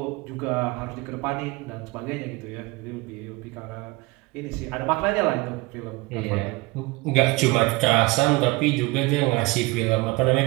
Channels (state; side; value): quieter; left; 22.9 dB